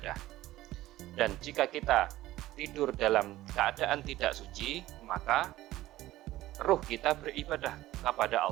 Dan jika kita tidur dalam keadaan tidak suci, maka ruh kita beribadah kepada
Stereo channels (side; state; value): left; quieter; 15.8 dB